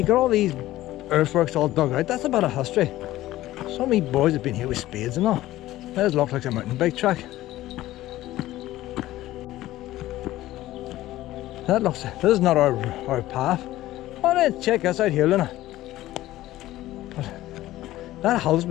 got all these earthworks all dug out. That's a bit of history. Some of me boys have been here with spades and all. That looks like a mountain bike track. This is not our path. Oh, then check this out here, Luna. But that hill's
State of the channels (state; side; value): quieter; right; 15.6 dB